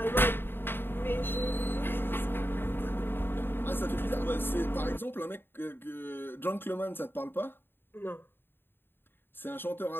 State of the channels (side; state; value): right; late; 0.10 ms